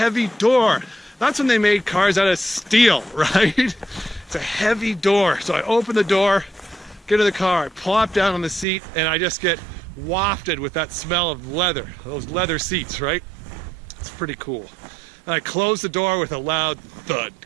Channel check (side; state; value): left; drops out; at 8.7 s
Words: door. That's when they made cars out of steel, right? It's a heavy door. So I open the door, get in the car, I plop down on the seat, and I just get wafted with that smell of leather, those leather seats, right? It's pretty cool. And I close the door with a loud thud.